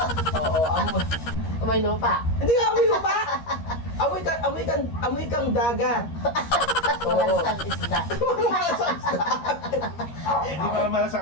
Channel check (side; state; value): right; late; 13 ms